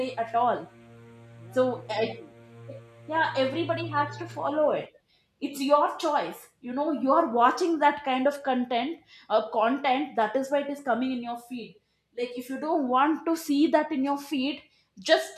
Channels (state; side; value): identical; both; correlation 1.00